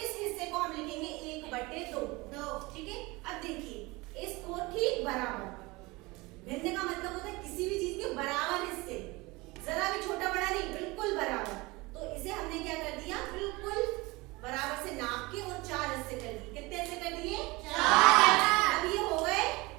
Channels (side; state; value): left; quieter; 23.1 dB